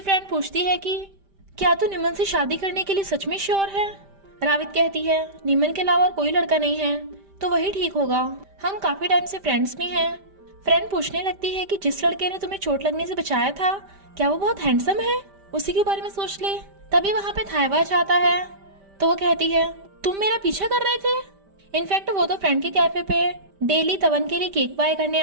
पूछती है कि क्या तू निमन से शादी करने के लिए सच में श्योर है। रावित कहती है निमन के अलावा और कोई लड़का नहीं है तो वही ठीक होगा, हम काफी टाइम से फ्रेंड्स भी हैं। फ्रेंड पूछने लगती है कि जिस लड़के ने तुम्हें चोट लगने से बचाया था क्या वो बहुत हैंडसम है, उसी के बारे में सोच ले। तभी वहाँ पे थाइवा जाता है तो वो कहती है तुम मेरा पीछा कर रहे थे। इनफैक्ट वो तो फ्रेंड के कैफे पे डेली तवन के लिए केक बाय करने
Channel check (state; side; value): late; left; 5.1 ms